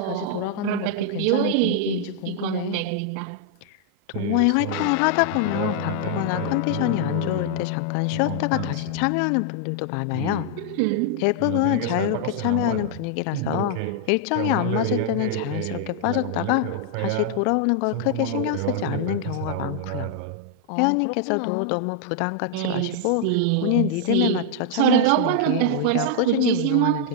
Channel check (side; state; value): both; different; correlation -0.01